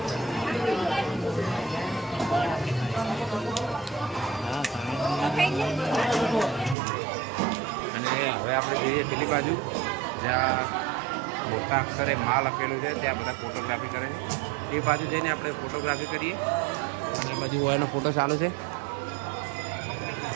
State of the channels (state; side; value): drops out; left; at 6.8 s